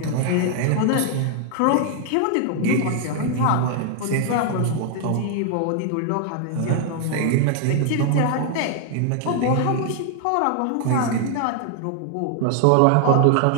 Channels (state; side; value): different; both; correlation 0.00